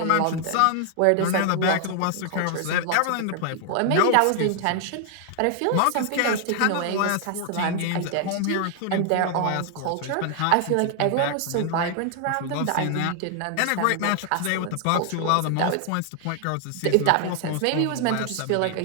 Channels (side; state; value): both; different; correlation 0.00